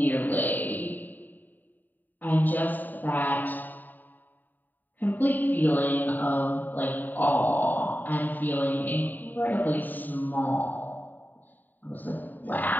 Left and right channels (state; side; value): late; right; 0.088 ms